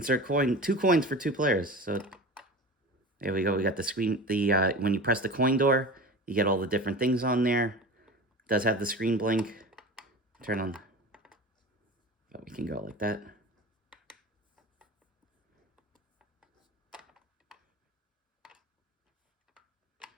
coin. 2 coins for 2 players. So there we go. We got the screen. The when you press the coin door, you get all the different things on there. It does have the screen blink. Turn on. But we can go like that.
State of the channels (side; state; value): both; normal; correlation 0.33